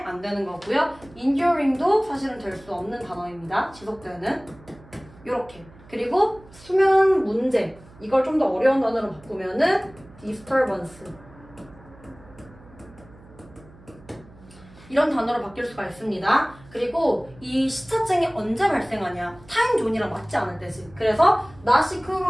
안 되는 거고요. enduring도 사실은 될 수 없는 단어입니다. 지속되는. 요렇게. 그리고 수면 문제. 이걸 좀 더 어려운 단어로 바꾸면은 disturbance. 이런 단어로 바뀔 수가 있습니다. 그리고 이 시차증이 언제 발생하냐? 타임존이랑 맞지 않을 때지. 그래서 not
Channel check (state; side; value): noise; right; hum, 23 dB below the sound